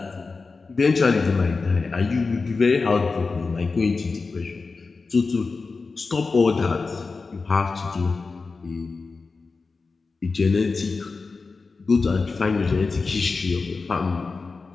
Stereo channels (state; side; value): quieter; right; 4.2 dB